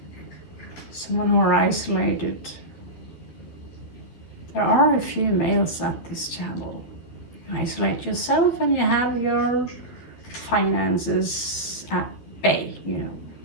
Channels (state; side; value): late; right; 12 ms